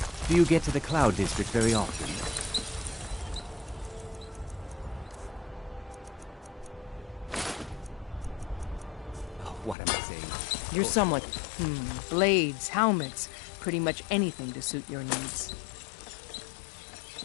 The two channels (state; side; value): drops out; right; at 9.8 s